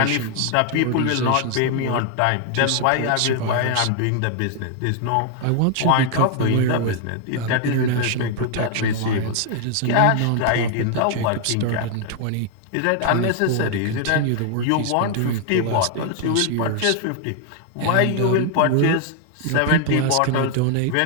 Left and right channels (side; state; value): both; different; correlation 0.00